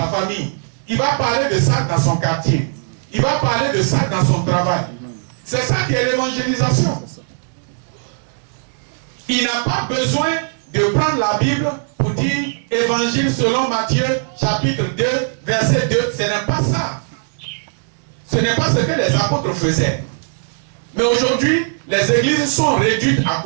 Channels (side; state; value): left; silent; digital silence